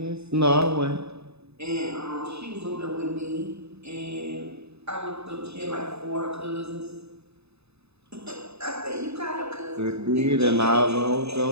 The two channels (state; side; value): late; left; 0.79 ms